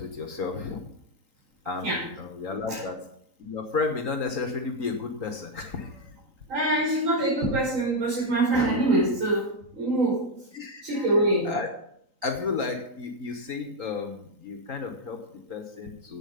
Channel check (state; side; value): late; left; 3.9 ms